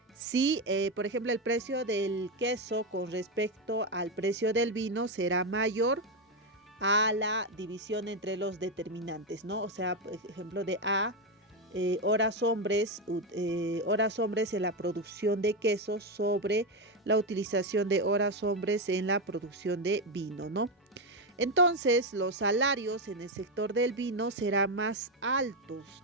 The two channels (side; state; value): both; normal; correlation 0.09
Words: Si, por ejemplo, el precio del queso con respecto al precio del vino será mayor a la división entre los determinantes, ¿no? O sea, por ejemplo, de A, horas hombres en la producción de quesos sobre la utilización de horas hombres en la producción de vino, ¿no? Entonces, los salarios en el sector del vino serán más altos,